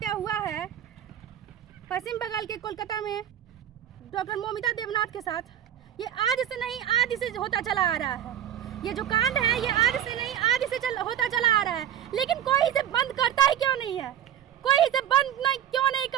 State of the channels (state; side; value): quieter; left; 10.5 dB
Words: हुआ है पश्चिम बंगाल के कोलकाता में डॉक्टर मोमिता देवनाथ के साथ, ये आज से नहीं आदि से होता चला आ रहा है। ये जो कांड है ये आज से नहीं आदि से होता चला आ रहा है, लेकिन कोई इसे बंद करता ही क्यों नहीं है? कोई इसे बंद क्यों नहीं